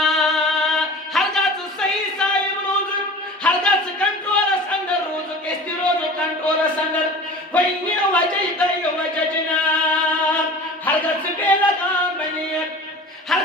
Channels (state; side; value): normal; both; correlation 0.39